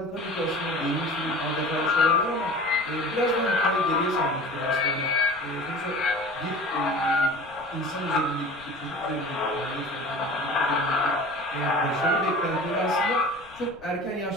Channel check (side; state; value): left; noise; rumble, 25 dB below the sound